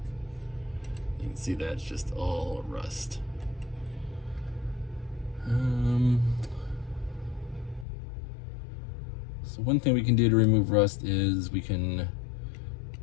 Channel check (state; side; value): drops out; right; at 7.9 s